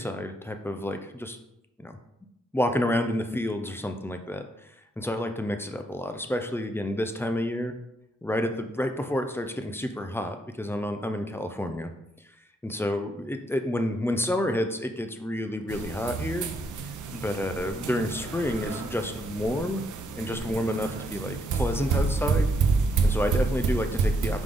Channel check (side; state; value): both; normal; correlation 0.75